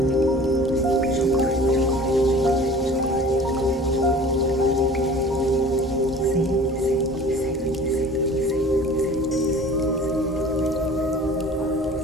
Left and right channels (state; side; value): normal; both; correlation 0.45